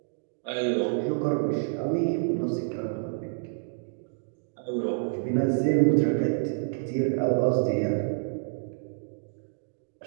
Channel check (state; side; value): silent; left; digital silence